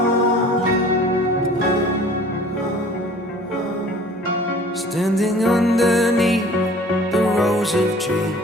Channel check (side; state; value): both; normal; correlation 0.48